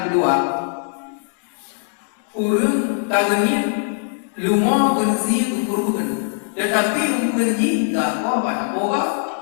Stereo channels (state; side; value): silent; right; digital silence